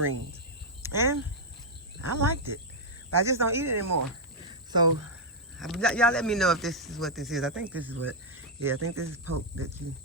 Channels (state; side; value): normal; both; correlation -0.02